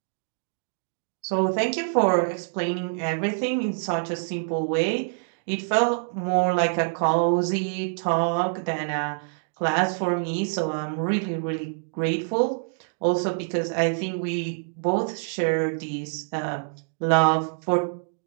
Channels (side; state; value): left; silent; digital silence